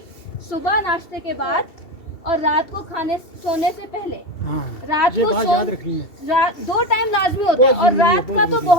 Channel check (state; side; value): late; right; 2.7 ms